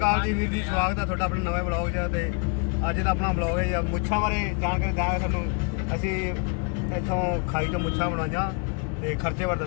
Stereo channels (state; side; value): quieter; right; 36.3 dB